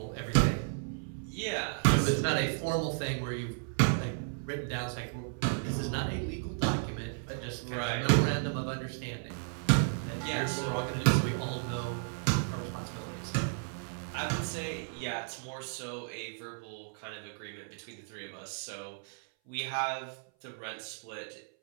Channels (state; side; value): silent; left; 55 dB below the other